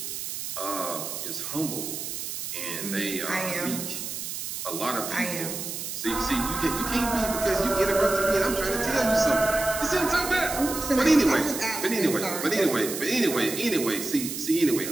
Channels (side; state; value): right; noise; hiss, 6 dB below the sound